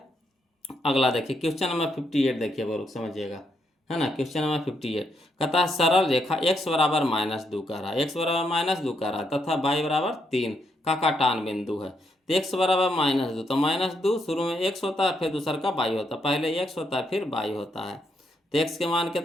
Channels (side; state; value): both; normal; correlation 0.77